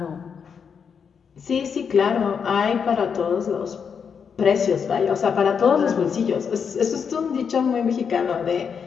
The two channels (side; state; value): right; quieter; 6.6 dB